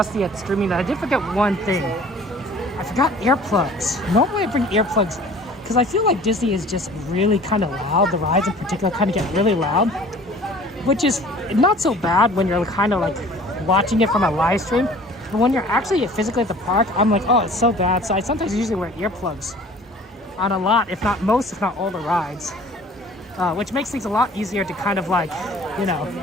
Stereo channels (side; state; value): both; normal; correlation 0.48